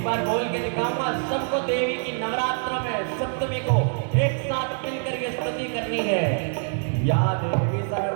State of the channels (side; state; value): left; silent; 60 dB below the other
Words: बार बोल के दिखाऊंगा, सबको देवी की नवरात्र में सप्तमी को एक साथ मिलकर ये स्तुति करनी है। या देवी